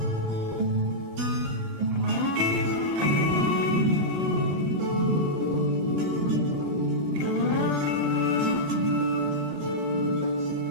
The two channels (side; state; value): left; late; 15 ms